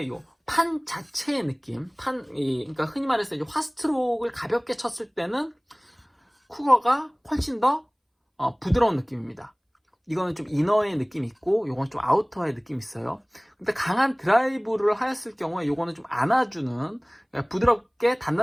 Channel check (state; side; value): identical; both; correlation 1.00